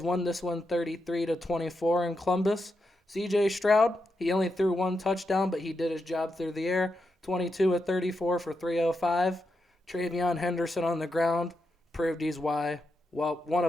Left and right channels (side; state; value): both; normal; correlation 0.85